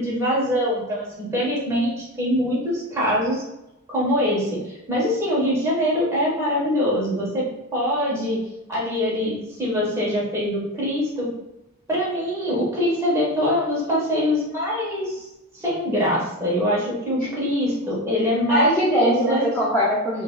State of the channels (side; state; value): both; normal; correlation 0.22